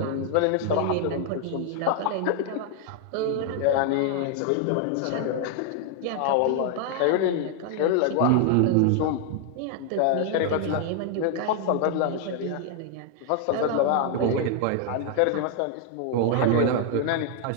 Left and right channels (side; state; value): both; different; correlation 0.00